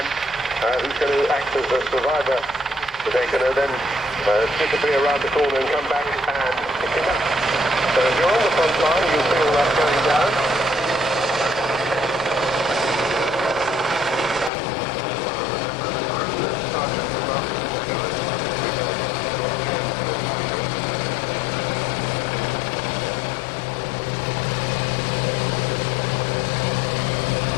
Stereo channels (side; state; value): right; drops out; at 14.5 s